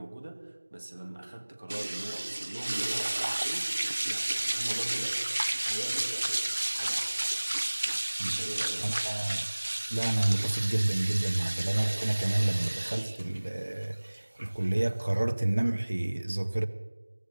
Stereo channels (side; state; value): both; inverted; correlation -1.00